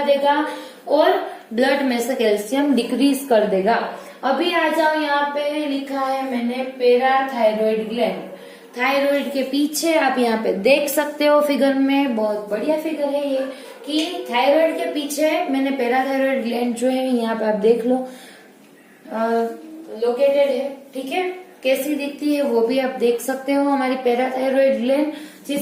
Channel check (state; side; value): identical; both; correlation 1.00